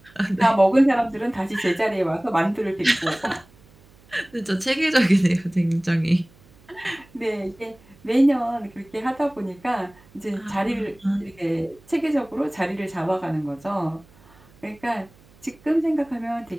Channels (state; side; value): noise; right; hum, 28 dB below the sound